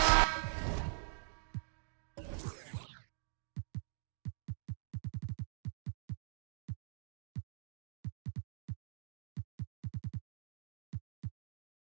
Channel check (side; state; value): left; silent; digital silence